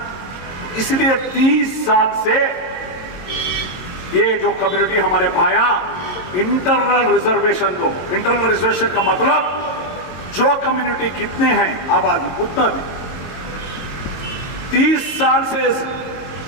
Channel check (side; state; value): right; late; 22 ms